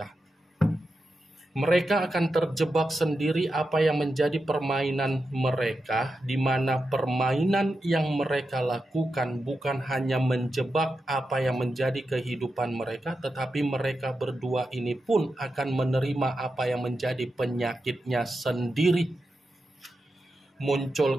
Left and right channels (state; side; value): normal; both; correlation 0.89